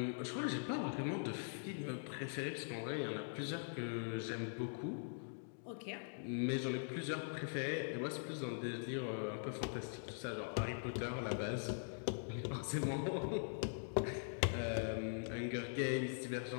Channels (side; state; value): right; silent; digital silence